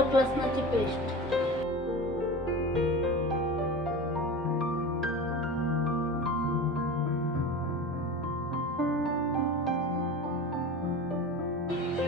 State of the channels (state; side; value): normal; both; correlation 0.31